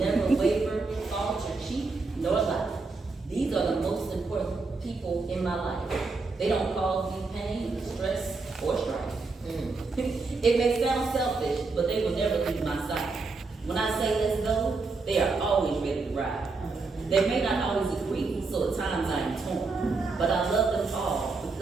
waver, falter, cheat, nor lie. These are the most important people in my life. They don't cause me pain, stress, or strife. It may sound selfish, but they will never leave my side. When I say let's go, they are always ready to ride. They may not always agree, so at times I am torn. But I love them all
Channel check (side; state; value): left; quieter; 4.0 dB